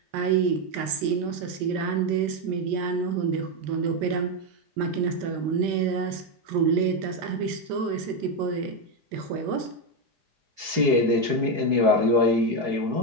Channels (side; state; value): left; late; 4.7 ms